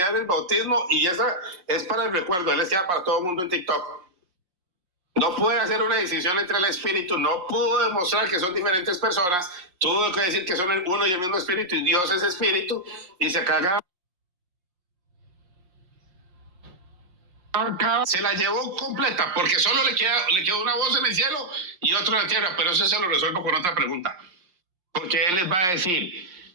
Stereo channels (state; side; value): late; left; 5.6 ms